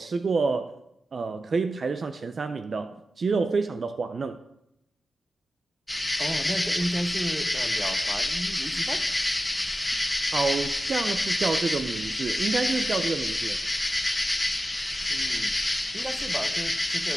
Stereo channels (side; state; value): both; normal; correlation 0.93